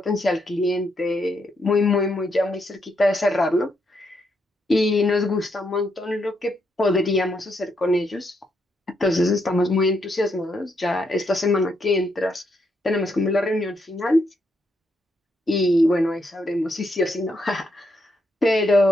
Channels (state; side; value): normal; both; correlation 0.78